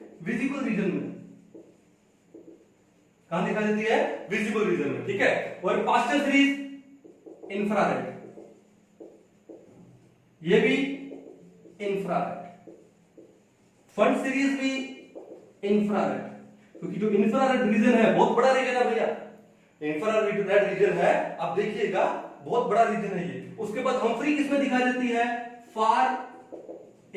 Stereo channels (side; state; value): both; identical; correlation 1.00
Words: विजिबल रीजन में। कहां दिखाई देती है, विजिबल रीजन में, ठीक है। और पास्टल सीरीज इंफ्रारेड, ये भी इंफ्रारेड। फंड सीरीज भी इंफ्रारेड, क्योंकि जो इंफ्रारेड रीजन है बहुत बड़ा रीजन है भैया, इंफ्रारेड रीजन है, आप देखिएगा बहुत बड़ा रीजन है ये। उसके बाद हम्फ्री किसमें दिखाई देती है, फार